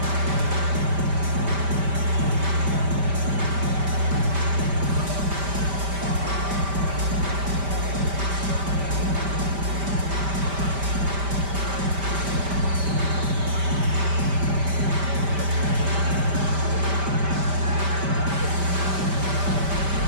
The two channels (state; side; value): late; left; 5.1 ms